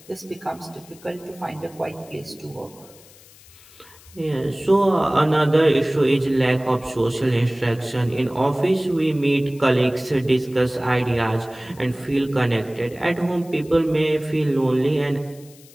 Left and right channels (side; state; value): left; noise; hiss, 24 dB below the sound